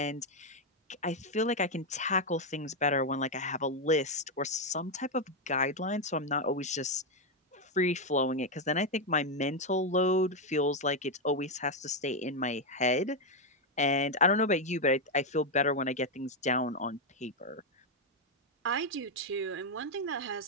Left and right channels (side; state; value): both; normal; correlation 0.03